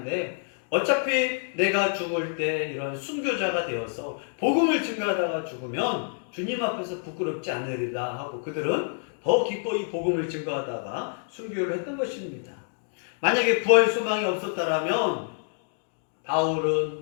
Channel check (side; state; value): right; silent; 60 dB below the other